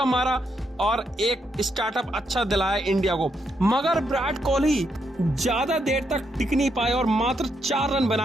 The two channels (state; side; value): normal; both; correlation 0.79